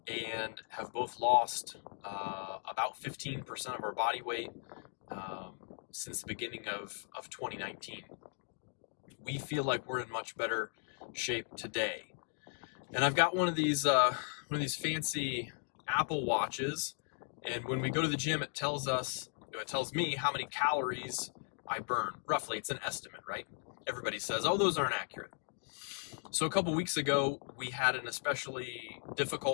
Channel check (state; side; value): silent; right; 53 dB below the other